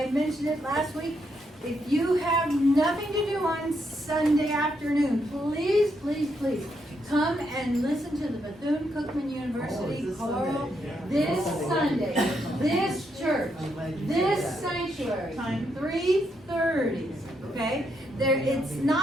mentioned it last week, if you have nothing to do on Sunday afternoon, please come and listen to the Bethune-Cookman University choral this Sunday, this church, this sanctuary, 3:30, okay? It's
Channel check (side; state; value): both; normal; correlation 0.78